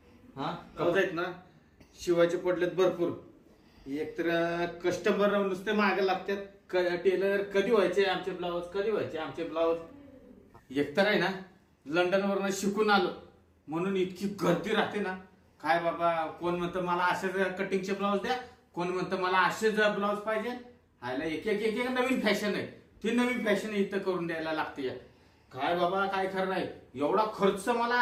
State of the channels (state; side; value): identical; both; correlation 1.00